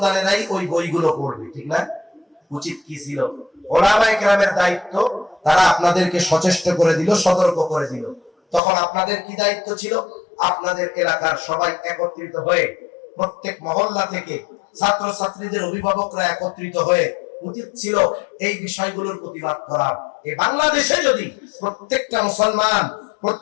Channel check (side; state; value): right; drops out; at 8.6 s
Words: ওই বইগুলো পড়বে, ঠিক না? উচিত কি ছিল? ওলামায়ে কেরামের দায়িত্ব, তারা আপনাদেরকে সচেষ্ট করে দিল, সতর্ক করে দিল। তখন আপনাদের কি দায়িত্ব ছিল? আপনাদের এলাকার সবাই একত্রিত হয়ে, প্রত্যেক মহল্লা থেকে ছাত্র ছাত্রীদের অভিভাবকরা একত্রিত হয়ে উচিত ছিল এই বিষয়গুলোর প্রতিবাদ করা। এই বাংলাদেশে যদি প্রত্যেকটা মুসলমান,